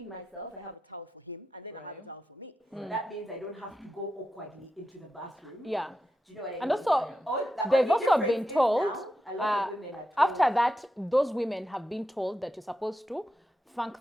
myself, I have a towel for him, and then I have a towel for me. That means I don't have to go awkwardly into the bathroom. Yeah. Do you know what I mean? And also, The they've only also difference been is told, now, a lot of women are told after that, those women have been told that you're supposed to thank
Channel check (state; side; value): normal; both; correlation 0.88